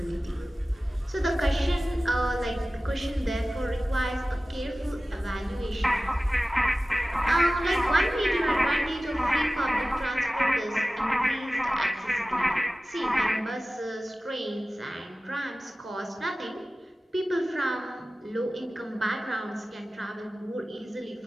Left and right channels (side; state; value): both; normal; correlation 0.97